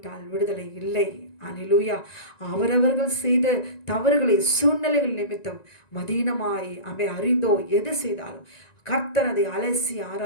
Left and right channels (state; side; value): late; right; 1.9 ms